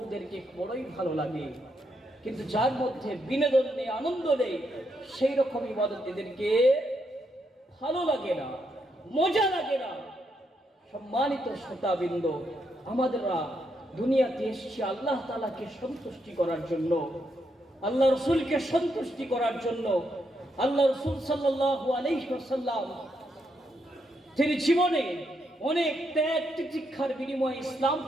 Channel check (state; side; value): normal; both; correlation 0.79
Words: বড়ই ভালো লাগে। কিন্তু যার মধ্যে বিনোদন নেই, আনন্দ নেই, সেই রকম ইবাদত এদেরকে ভালো লাগে না, মজা লাগে না। সম্মানিত শ্রোতাবৃন্দ, আমাদেররা দুনিয়াতে এসেছি আল্লাহ তাআলাকে সন্তুষ্টি করার জন্য, আল্লাহ রসুলকে সন্তুষ্টি করার জন্য। আল্লাহ রসুল সাল্লাল্লাহু আলাইহি ওয়াসাল্লাম তিনি জীবনে অনেক ত্যাগ তিতিক্ষার বিনিময়ে